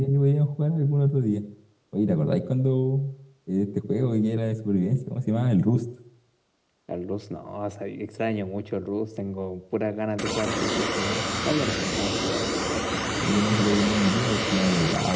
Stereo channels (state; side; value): identical; both; correlation 1.00